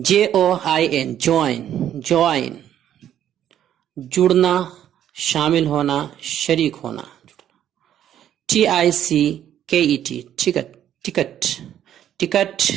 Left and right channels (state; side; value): quieter; left; 10.7 dB